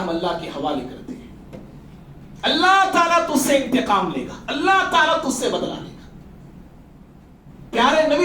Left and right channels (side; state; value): both; identical; correlation 1.00